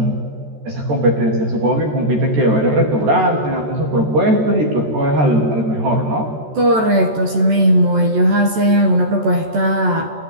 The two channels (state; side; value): late; left; 14 ms